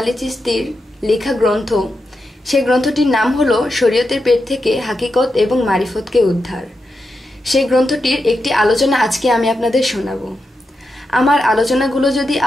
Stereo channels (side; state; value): both; normal; correlation 0.87